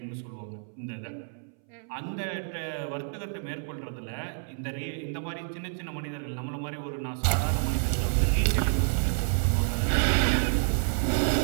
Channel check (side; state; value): left; silent; 59 dB below the other